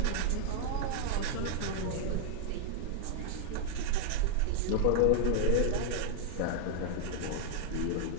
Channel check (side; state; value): both; different; correlation 0.00